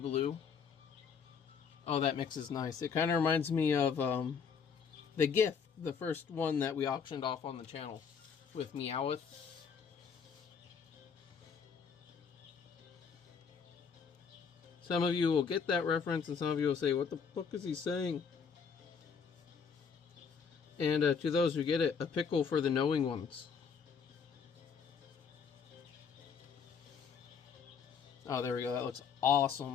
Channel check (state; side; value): quieter; right; 6.3 dB